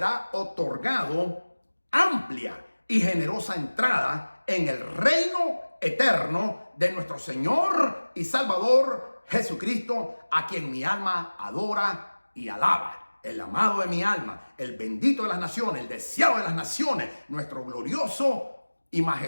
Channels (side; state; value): both; inverted; correlation -1.00